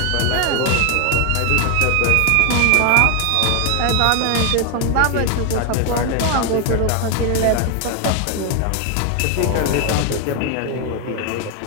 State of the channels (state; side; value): different; both; correlation 0.01